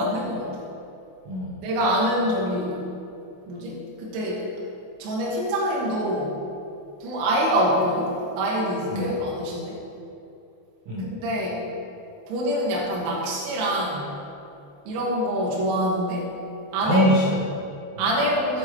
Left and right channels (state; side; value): late; left; 28 ms